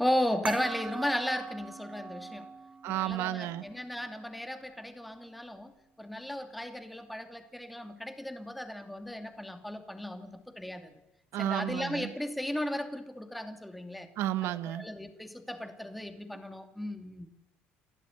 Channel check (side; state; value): both; normal; correlation 0.81